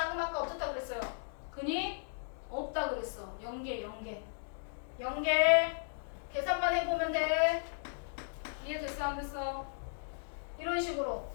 아까 어떻다 그랬어요? 근이 없다 그랬어. 0개 계산만 해보면 돼. 이해됐어 안 됐어? 이런 식으로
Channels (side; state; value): right; silent; digital silence